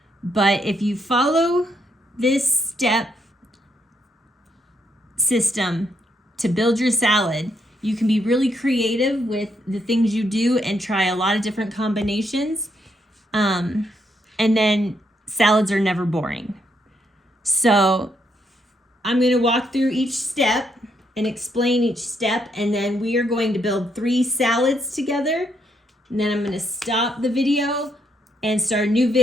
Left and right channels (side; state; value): both; normal; correlation 0.76